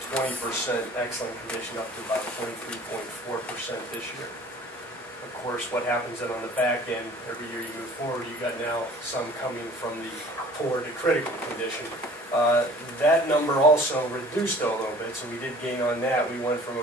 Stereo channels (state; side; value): normal; both; correlation 0.49